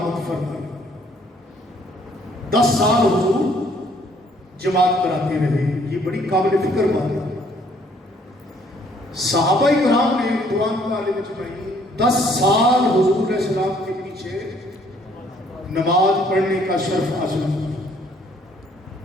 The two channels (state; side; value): normal; both; correlation 0.63